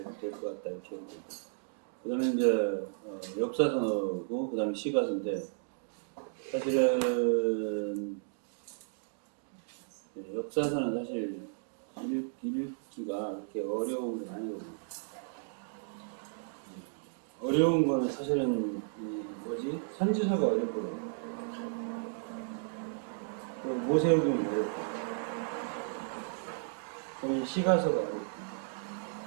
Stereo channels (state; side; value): silent; left; digital silence